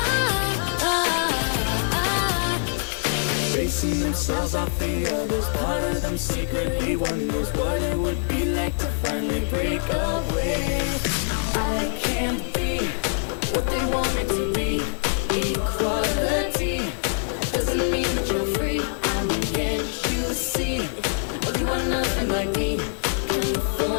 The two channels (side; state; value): right; silent; digital silence